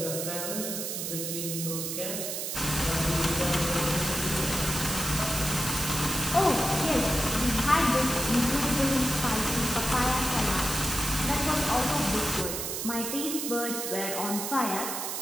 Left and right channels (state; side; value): noise; right; hiss, 3 dB below the sound